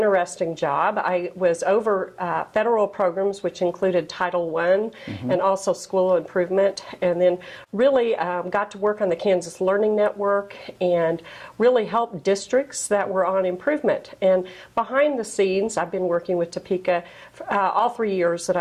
job. I was over federal programs, which included Title I and also school improvement, and then really got to work on the Kansas Learning Network and really help districts that were on improvement. And behind the scenes, I've been working with Topeka all 3 years that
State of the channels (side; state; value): both; identical; correlation 1.00